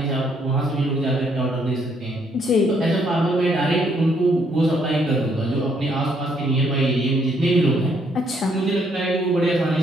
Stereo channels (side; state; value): both; normal; correlation 0.70